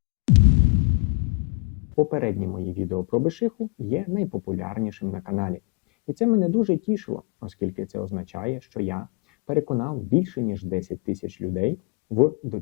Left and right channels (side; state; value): right; quieter; 31.6 dB